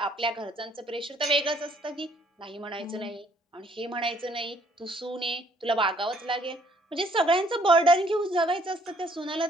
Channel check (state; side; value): normal; both; correlation 0.64